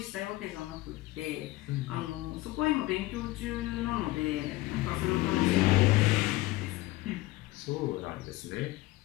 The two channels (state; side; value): quieter; right; 18.9 dB